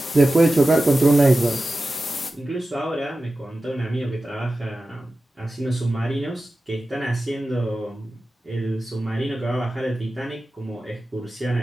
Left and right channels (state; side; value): normal; both; correlation 0.94